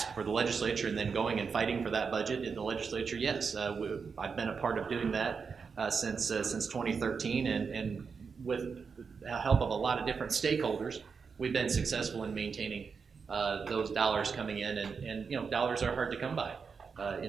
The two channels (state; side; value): quieter; left; 5.6 dB